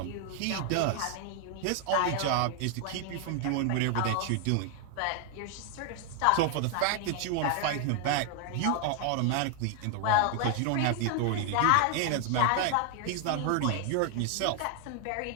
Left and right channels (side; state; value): both; different; correlation 0.00